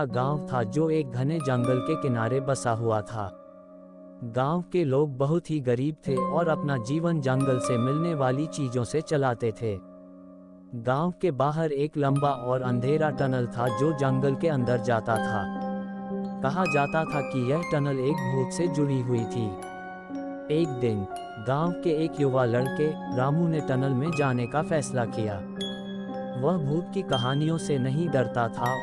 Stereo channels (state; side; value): identical; both; correlation 1.00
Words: गांव था जो एक घने जंगल के किनारे बसा हुआ था। गांव के लोग बहुत ही गरीब थे और अपना जीवन जंगल से मिलने वाली चीजों से चलाते थे। गांव के बाहर एक लंबा और अंधेरा टनल था जो जंगल के अंदर जाता था। कहा जाता था कि यह टनल एक भूत से जुड़ी हुई थी। एक दिन गांव के एक युवा लड़के रामू ने टनल में जाने का फैसला किया। वह भूत की कहानियों से नहीं डरता था